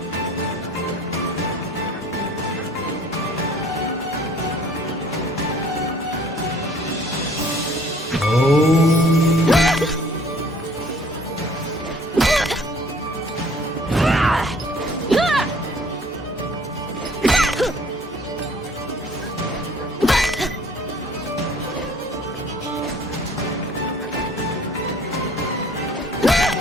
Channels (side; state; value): both; normal; correlation 0.55